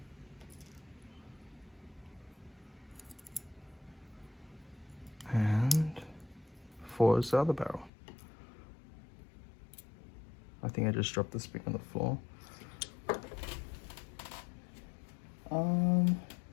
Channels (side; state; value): right; drops out; at 7.9 s